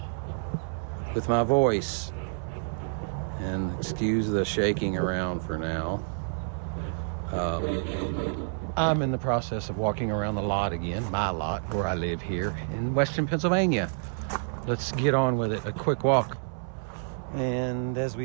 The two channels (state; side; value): silent; left; 59 dB below the other